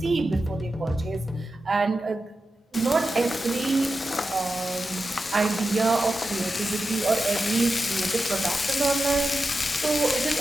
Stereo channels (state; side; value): normal; both; correlation 0.91